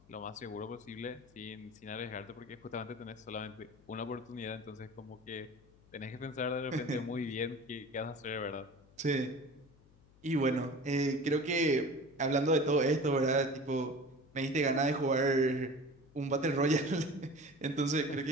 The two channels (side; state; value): left; noise; hum, 27 dB below the sound